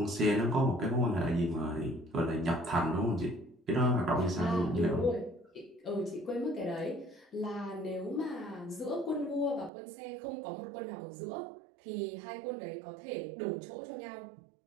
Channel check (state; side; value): drops out; left; at 9.7 s